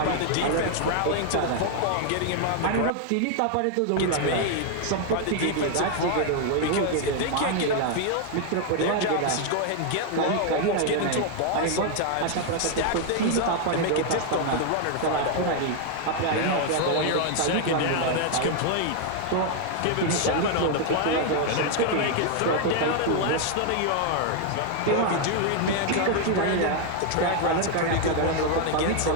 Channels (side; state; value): both; different; correlation 0.00